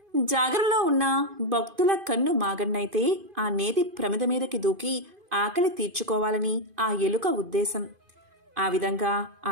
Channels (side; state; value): left; late; 2.5 ms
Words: జాగరణలో ఉన్న భక్తుల కన్ను మాగన్నైతే ఆ నేతి ప్రమిద మీదకి దూకి ఆకలి తీర్చుకోవాలని ఆ ఎలుక ఉద్దేశం. ఆ విధంగా ఆ